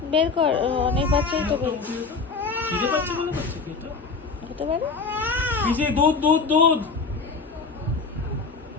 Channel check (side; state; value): right; quieter; 4.6 dB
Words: বের কর, অনেক বাচ্চাই তো বের খিদে পাচ্ছে বলে করছে কি এটা? হতে পারে। পিছে দুধ দুধ দুধ।